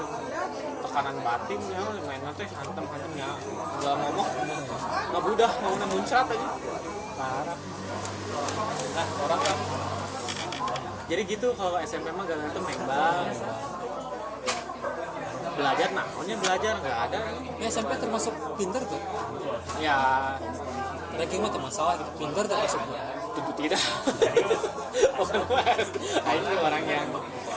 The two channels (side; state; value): both; identical; correlation 1.00